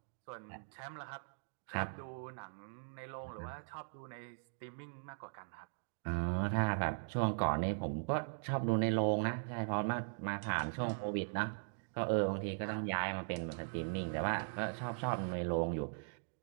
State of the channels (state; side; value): silent; left; digital silence